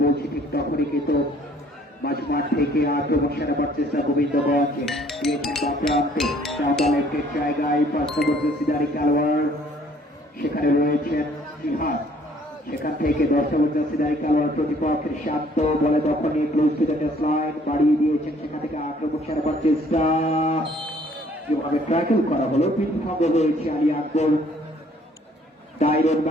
বলছি ঠিক তখনই কিন্তু মাঝমাঠ থেকে আক্রমণ সারাবার চেষ্টা গোবিন্দগঞ্জ দিয়েছেন প্রান্তে লেফটের জায়গায় 5 নম্বর জার্সিধারী খেলোয়াড়, সেখানে রয়েছেন জিহাদ, সেখান থেকে 10 নম্বর জার্সিধারী খেলোয়াড় প্রতিপক্ষের শান্ত বলে দখলে ক্লোজ টু দ্য লাইন বাড়িয়ে দিয়েছেন, সেখান থেকে আক্রমণ সারাবার চেষ্টা, যেভাবে ট্র্যাকেল করা হলো বিধ্বস্ত হয়েছে আলী আকবর। ডায়রন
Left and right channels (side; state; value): both; normal; correlation 0.60